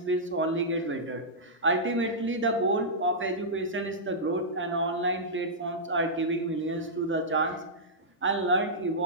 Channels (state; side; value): normal; both; correlation -0.12